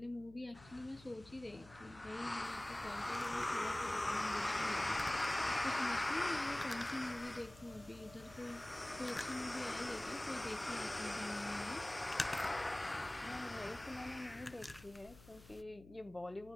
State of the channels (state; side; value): noise; left; hum, 20 dB below the sound